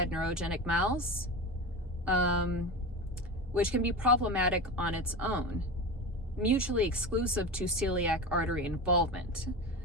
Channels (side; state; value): both; normal; correlation 0.25